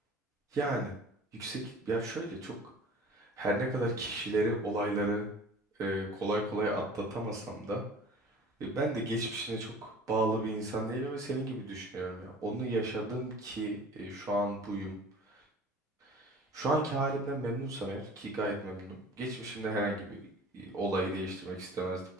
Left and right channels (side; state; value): both; normal; correlation 0.44